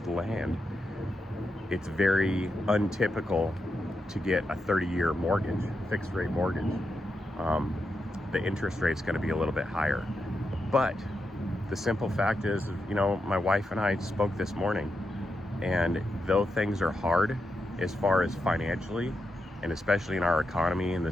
land, it's very untypical to get a 30-year mortgage, fixed rate mortgage. The interest rate's going to be a little bit higher. But the simple fact is, you know, my wife and I spoke this morning, and though things are hard as far as financially, and especially in our economy, and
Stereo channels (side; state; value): both; normal; correlation 0.85